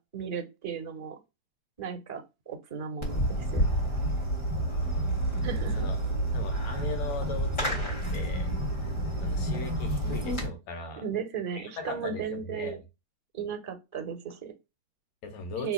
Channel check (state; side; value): late; right; 5.0 ms